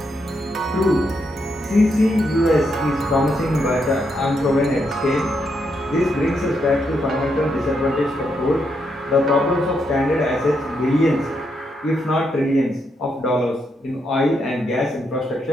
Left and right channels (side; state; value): both; normal; correlation 0.79